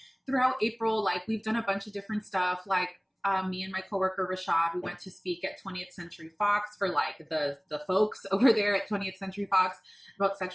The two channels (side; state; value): both; identical; correlation 1.00